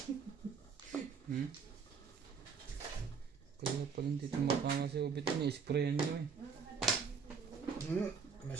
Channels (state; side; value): quieter; left; 5.9 dB